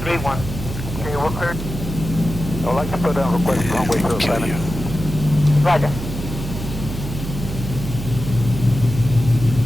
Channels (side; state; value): right; noise; hum, 7 dB below the sound